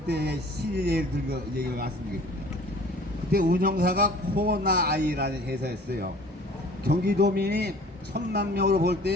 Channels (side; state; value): both; normal; correlation 0.48